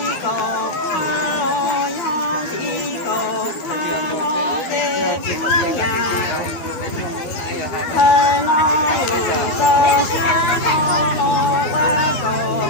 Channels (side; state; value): right; late; 13 ms